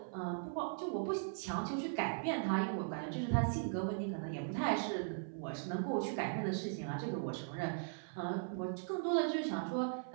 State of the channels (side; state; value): left; silent; 52 dB below the other